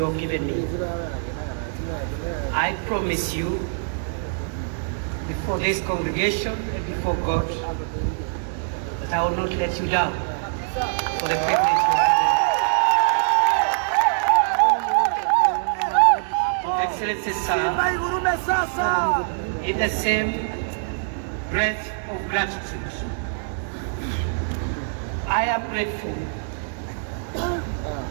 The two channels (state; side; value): silent; left; digital silence